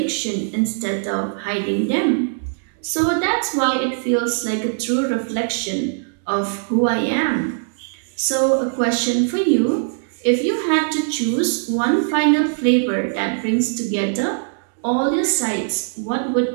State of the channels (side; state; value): left; silent; digital silence